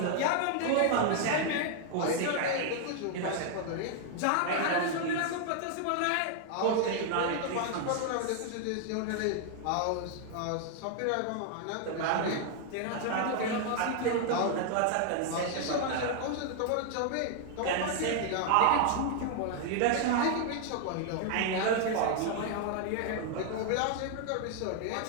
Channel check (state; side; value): different; both; correlation 0.00